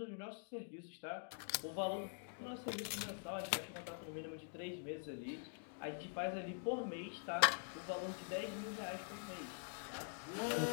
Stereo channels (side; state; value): right; silent; digital silence